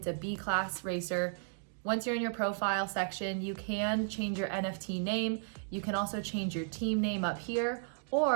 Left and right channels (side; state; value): left; silent; digital silence